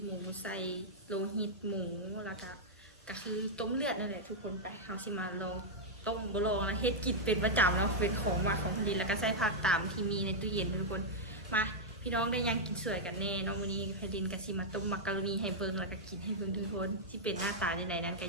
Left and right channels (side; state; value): both; normal; correlation -0.04